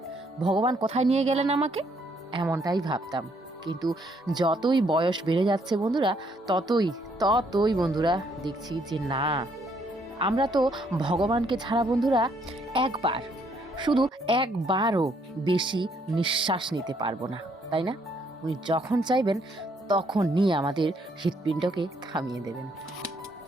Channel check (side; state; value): both; normal; correlation 0.69